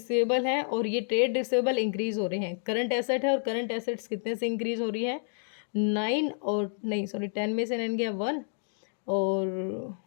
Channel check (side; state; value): right; silent; digital silence